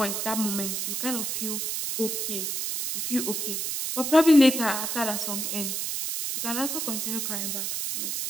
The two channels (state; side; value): noise; right; hiss, 2 dB below the sound